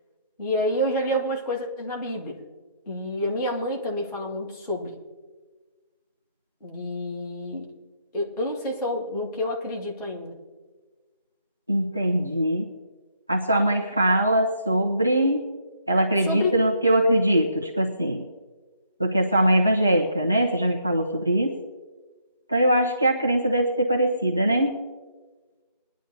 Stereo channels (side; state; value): both; inverted; correlation -0.71